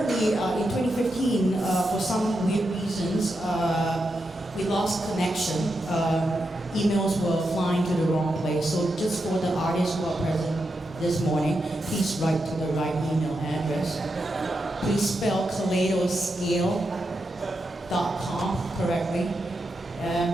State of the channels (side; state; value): both; normal; correlation 0.86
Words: in 2015, for some weird reasons, we lost connection. Emails were flying to the wrong place. So just for the artists who are present this morning, please write to the right email address. Please spell kaleidoscale.com correctly.